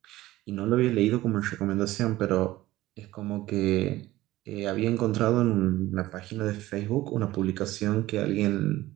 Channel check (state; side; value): quieter; left; 16.7 dB